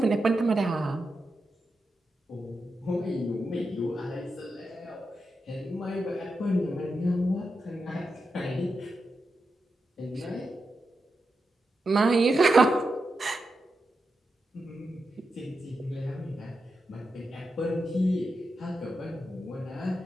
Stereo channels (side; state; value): both; normal; correlation 0.88